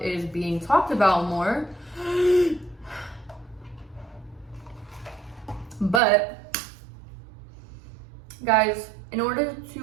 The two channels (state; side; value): drops out; left; at 6.0 s